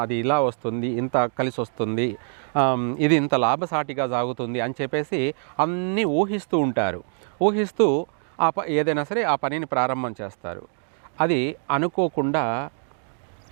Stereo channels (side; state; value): left; silent; 61 dB below the other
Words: అది ఇలా వస్తుంది, ఇంత కలిసి వస్తుంది, ఇది ఇంత లాభసాటిగా సాగుతుంది అని చెప్పేసి అన్నీ ఊహిస్తూ ఉంటారు. ఊహిస్తూ ఏదైనా సరే ఆ పనిని ప్రారంభం చేస్తారు. అది అనుకోకుండా